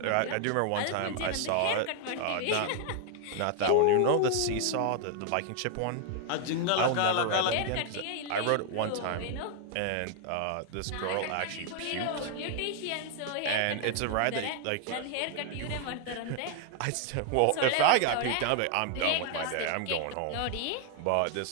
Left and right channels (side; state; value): both; different; correlation 0.00